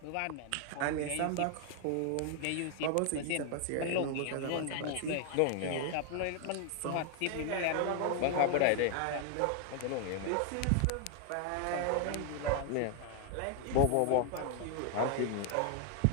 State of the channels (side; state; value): both; different; correlation 0.00